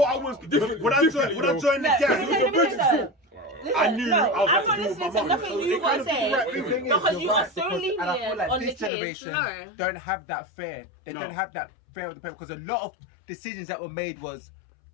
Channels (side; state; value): right; drops out; at 8.9 s